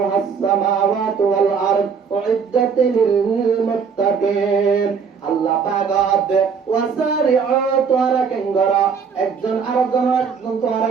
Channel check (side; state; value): left; quieter; 6.1 dB